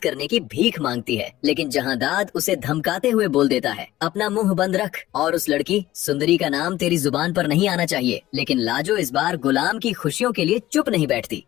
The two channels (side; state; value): right; quieter; 15.4 dB